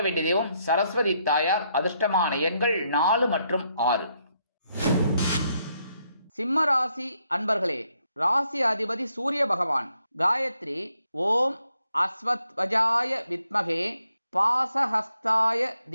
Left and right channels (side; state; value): both; inverted; correlation -0.76